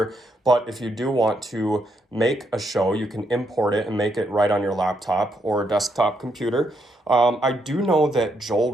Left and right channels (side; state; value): both; normal; correlation 0.77